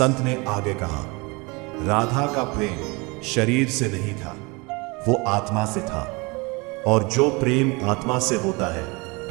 ने आगे कहा, राधा का प्रेम शरीर से नहीं था, वो आत्मा से था। और जो प्रेम आत्मा से होता है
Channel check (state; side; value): quieter; left; 27.1 dB